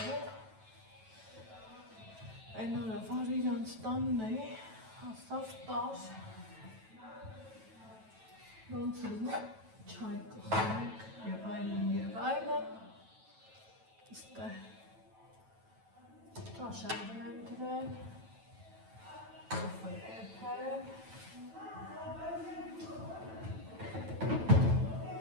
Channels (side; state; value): left; late; 9.1 ms